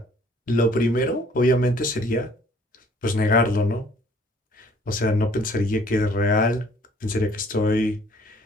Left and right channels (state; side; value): normal; both; correlation 0.58